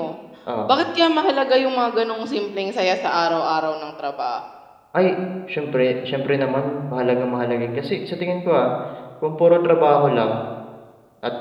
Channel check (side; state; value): both; identical; correlation 1.00